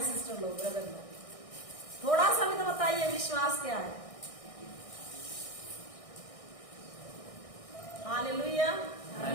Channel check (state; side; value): late; right; 1.6 ms